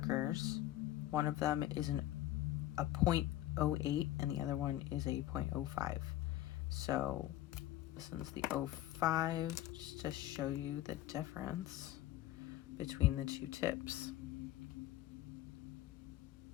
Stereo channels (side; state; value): right; quieter; 14.3 dB